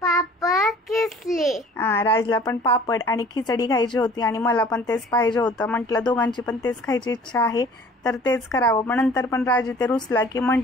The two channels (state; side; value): normal; both; correlation 0.50